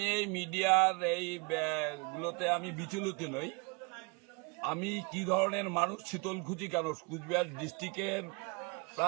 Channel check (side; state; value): left; quieter; 31.5 dB